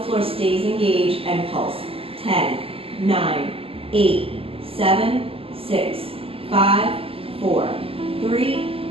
floor stays engaged and pulse. 10, 9, 8, 7, 6, 5, 4, 3,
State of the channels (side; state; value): left; late; 0.27 ms